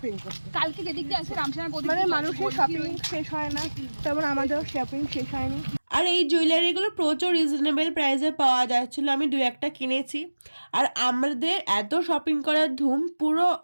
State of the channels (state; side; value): inverted; both; correlation -1.00